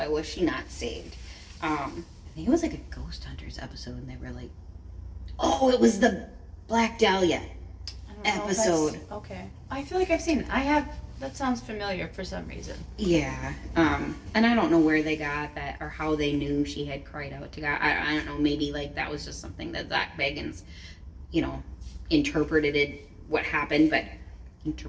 she not saved? I think it was like a Ghost Hunters episode, and they were like, oh, it was the Black Dahlia episode. Okay. I feel like I've seen it. That sounds familiar for some reason. Yeah. And I don't know where they got that or how they knew she had cried out to God. I don't know. Maybe like that was just something that Zach Bagans, you know, interpreted it, what happened, but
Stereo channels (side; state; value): both; identical; correlation 1.00